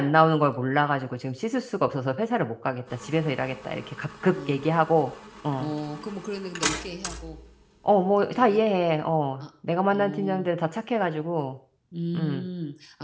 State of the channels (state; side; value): identical; both; correlation 1.00